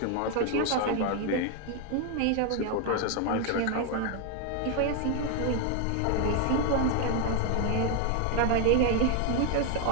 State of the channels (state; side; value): different; both; correlation 0.01